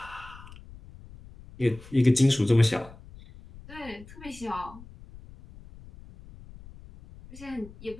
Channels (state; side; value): noise; left; rumble, 19 dB below the sound